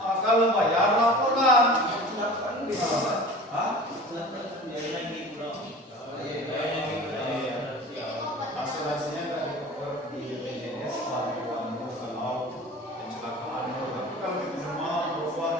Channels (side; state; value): both; normal; correlation 0.39